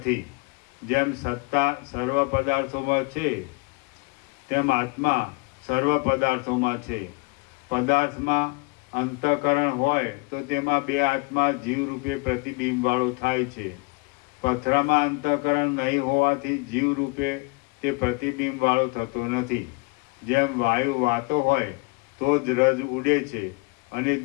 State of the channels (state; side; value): quieter; right; 29.3 dB